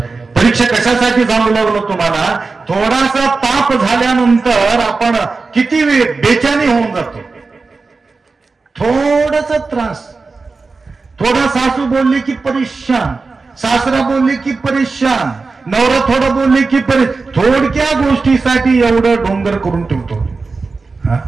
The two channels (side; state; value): left; quieter; 4.1 dB